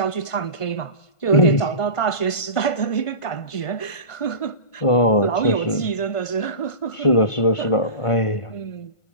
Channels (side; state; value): right; late; 1.5 ms